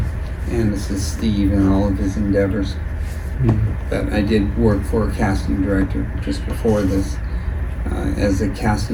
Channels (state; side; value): identical; both; correlation 1.00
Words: And this is Steve and all of his endeavors. But I did work for a casting director just before this as a